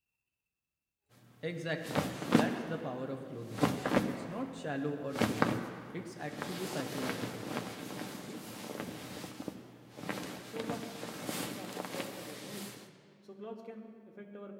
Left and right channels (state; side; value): identical; both; correlation 1.00